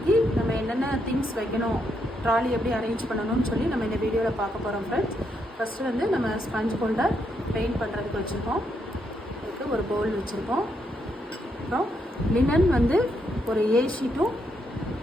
நம்ம என்னென்ன திங்ஸ் வைக்கணும், ட்ராலி எப்படி அரேஞ்ச் பண்ணணும்னு சொல்லி நம்ம இந்த வீடியோவில் பார்க்க போகிறோம் ஃப்ரெண்ட்ஸ். ஃபஸ்ட்டு வந்து நம்ம ஸ்பஞ்ச் ஹோல்டர் பெயிண்ட் பண்ணுறதுக்கு வச்சுருக்கோம். அதுக்கு ஒரு பவுல் வச்சுருக்கோம். அப்புறம் லினன் வந்து ஒரு ஏ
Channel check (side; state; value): both; normal; correlation 0.78